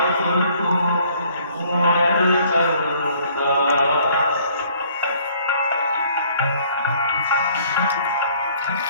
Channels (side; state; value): both; inverted; correlation -0.59